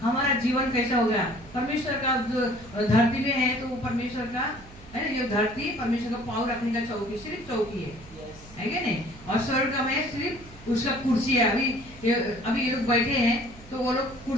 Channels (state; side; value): noise; right; hum, 20 dB below the sound